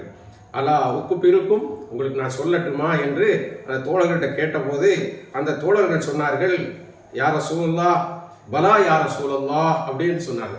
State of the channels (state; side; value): identical; both; correlation 1.00